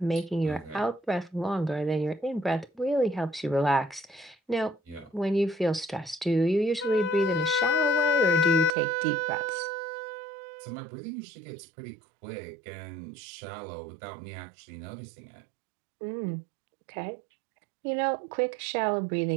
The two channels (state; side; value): drops out; left; at 8.7 s